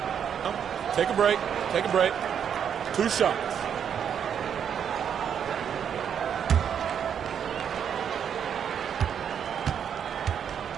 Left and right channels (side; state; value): left; quieter; 8.2 dB